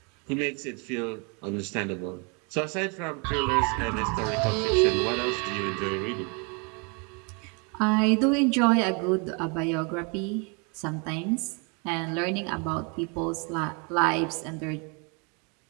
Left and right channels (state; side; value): quieter; left; 33.7 dB